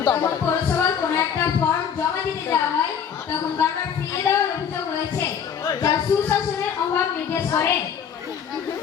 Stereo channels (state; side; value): quieter; right; 7.7 dB